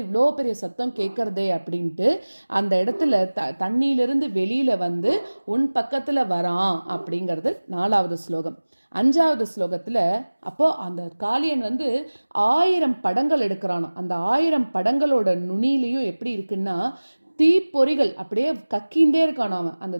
இவ்வளோ பெரிய சத்தம் கேட்கறதே அப்படின்ட்டு அந்த இடத்துல தண்ணியிலிருந்து வெளியில உன் பக்கத்துல வரான் அப்படிங்கிறது 4வது ஸ்லோகம். 5வது ஸ்லோகத்துல அப்போ அந்த காளியன் 1000 படங்கள் எடுக்கிறானா. அந்த 1000 படங்களோட நுனியிலையும் எப்படி இருக்குன்னா தீப்பொறிகள் அப்படியே கக்கிண்டே இருக்கானாம. அந்த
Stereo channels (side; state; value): both; inverted; correlation -1.00